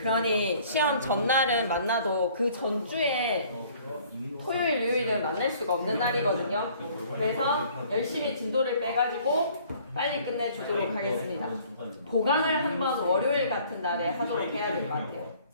시험 전날은 만나도 그 전주에 토요일, 일요일은 만날 수가 없는 날이거든요. 그래서 열심히 진도를 빼가지고 빨리 끝내주도록 하겠습니다. 보강을 한번 월요일 같은 날에 하도록 해야 될 것 같아요.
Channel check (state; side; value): inverted; both; correlation -0.56